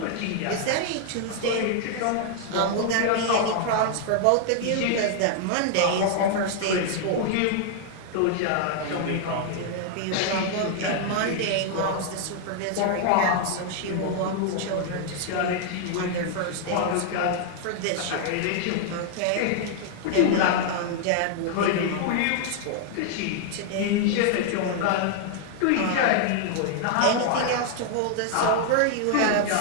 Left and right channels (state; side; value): different; both; correlation 0.00